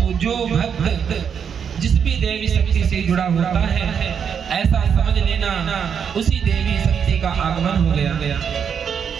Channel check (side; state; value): left; quieter; 7.4 dB